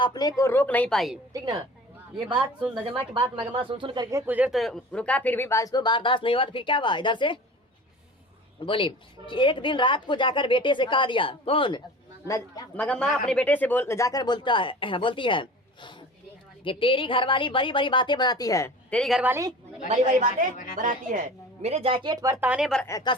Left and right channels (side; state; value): both; normal; correlation 0.40